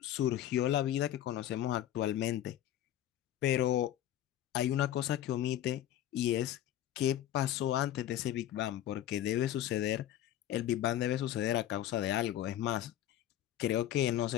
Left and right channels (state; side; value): quieter; right; 12.3 dB